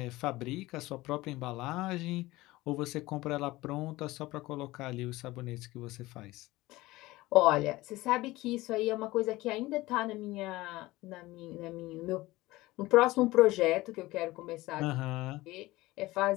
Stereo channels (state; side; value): quieter; right; 19.1 dB